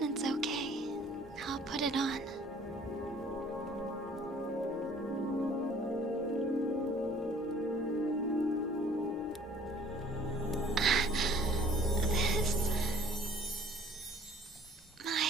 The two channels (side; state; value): both; normal; correlation 0.54